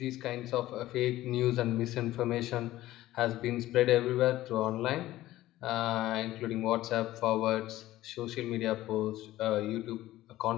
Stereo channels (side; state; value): right; quieter; 15.5 dB